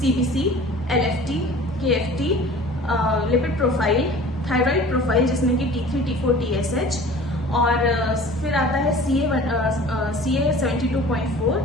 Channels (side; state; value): both; normal; correlation 0.44